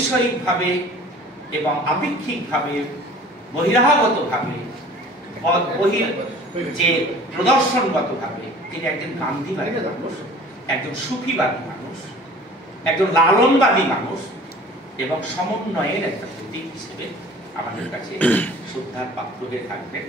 ভাবে এবং আপেক্ষিক ভাবে, বহিরাগত ভাবে, যে প্রদর্শনগত ভাবে তিনি একজন গান্ধীবাদী মানুষ, একজন সুফিবাদী মানুষ, একজন লালনবাদী মানুষ, এবং সমন্বয়ের একটা প্রতীক হিসেবে আমাদের কাছে শ্রদ্ধার পাত্র হয়ে থাকবেন।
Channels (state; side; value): normal; both; correlation 0.46